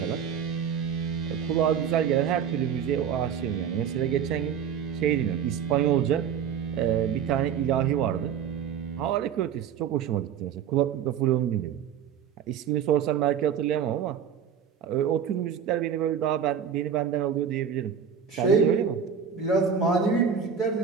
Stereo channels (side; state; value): left; quieter; 7.8 dB